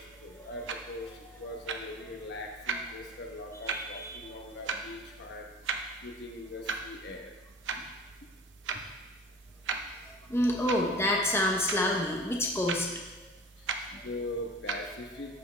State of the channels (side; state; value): both; normal; correlation 0.39